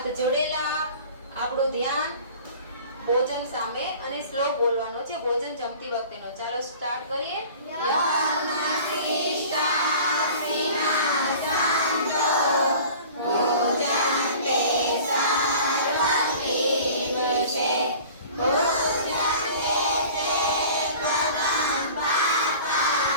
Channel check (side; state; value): both; inverted; correlation -0.43